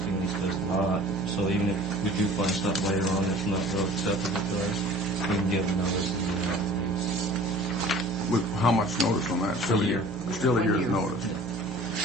lease does not. So even if we do find stuff later on that's not real acceptable to us, we can give them notice. With how much notice on that? Still A year. Still a 1 year's year. notice.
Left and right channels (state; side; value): normal; both; correlation 0.45